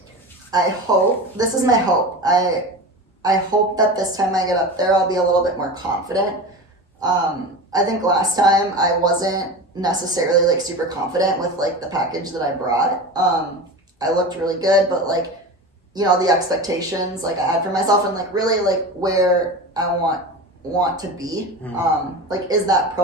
This is my hope. I hope that this time I get up there, I'll be a little bit more confident. I think last time I wasn't necessarily like super confident with like the package that I brought. I looked really good, but like, the expectations like I had for myself and like really like where I want to be, like is that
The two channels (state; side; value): normal; both; correlation 0.29